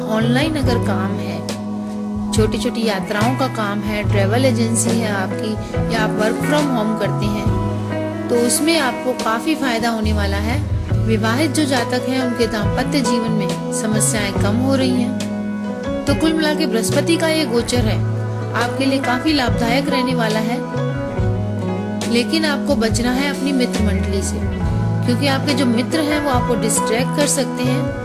ऑनलाइन अगर काम है, छोटी छोटी यात्राओं का काम है, ट्रेवल एजेंसी है आपकी, या आप वर्क फ्रॉम होम करते हैं, तो उसमें आपको काफी फायदा होने वाला है। विवाहित जो जातक हैं उनके दाम्पत्य जीवन में समस्याएं कम हो रही हैं। तो कुल मिला के बृहस्पति का ये गोचर है आपके लिए काफी लाभदायक रहने वाला है। लेकिन आपको बचना है अपनी मित्र मंडली से, क्योंकि आपके जो मित्र हैं वो आपको डिस्ट्रैक्ट कर सकते हैं।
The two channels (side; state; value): both; identical; correlation 1.00